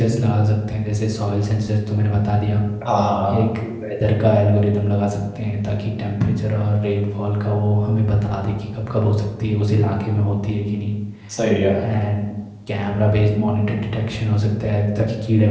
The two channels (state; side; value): identical; both; correlation 1.00